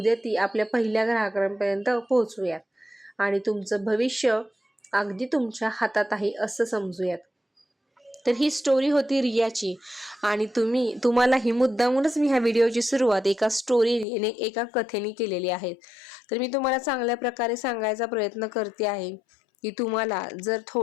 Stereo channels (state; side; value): drops out; right; at 14.1 s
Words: ती आपल्या पहिल्या ग्राहकांपर्यंत पोहोचवूयात आणि तुमचं भविष्य अगदी तुमच्या हातात आहे असं समजूयात. तर ही स्टोरी होती रियाची आणि तुम्हाला ही मुद्दामूनच मी ह्या व्हिडिओची सुरुवात एका कथेने केलेली आहे. तर मी तुम्हाला चांगल्या प्रकारे सांगायचा प्रयत्न करते आहे की तुम्हाला जर